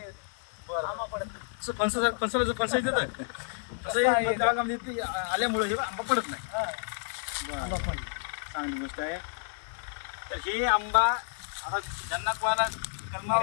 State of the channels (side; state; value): right; silent; 58 dB below the other